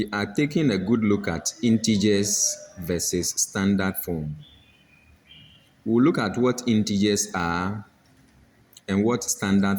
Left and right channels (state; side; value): identical; both; correlation 1.00